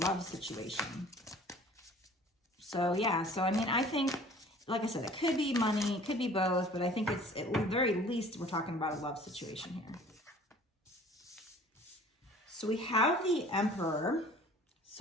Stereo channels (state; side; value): normal; both; correlation 0.49